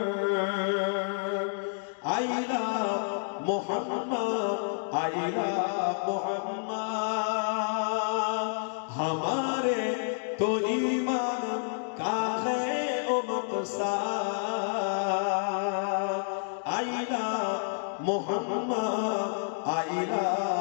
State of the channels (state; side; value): silent; right; digital silence